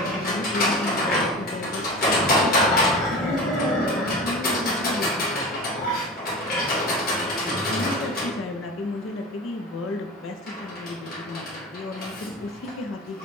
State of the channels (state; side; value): normal; both; correlation 0.32